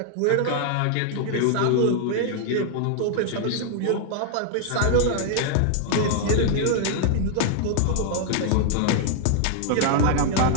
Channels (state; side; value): different; both; correlation 0.00